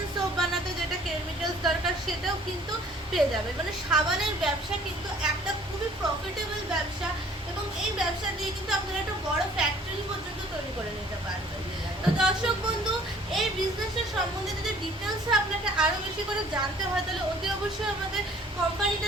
সোপ বানাতে যেটা কেমিক্যালস দরকার সেটাও কিন্তু পেয়ে যাবে। মানে সাবানের ব্যবসা কিন্তু একটা খুবই প্রফিটেবল ব্যবসা এবং এই ব্যবসা দিয়ে কিন্তু আপনারা একটা বড় ফ্যাক্টরি পর্যন্ত তৈরি করে নিতে পারবেন। তো দর্শক বন্ধু, এই বিজনেসের সম্বন্ধে যদি ডিটেলসে আপনাকে আরও বেশি করে জানতে হয়, তাহলে অতি অবশ্যই আমাদের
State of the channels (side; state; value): both; normal; correlation 0.54